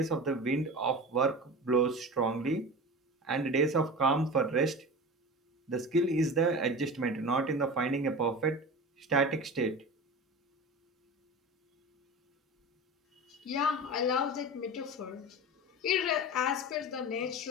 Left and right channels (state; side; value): normal; both; correlation 0.31